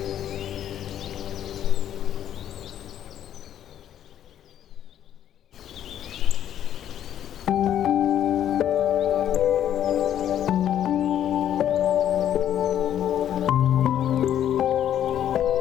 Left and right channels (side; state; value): right; quieter; 10.6 dB